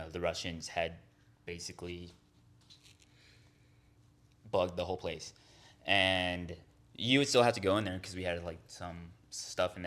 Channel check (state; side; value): identical; both; correlation 1.00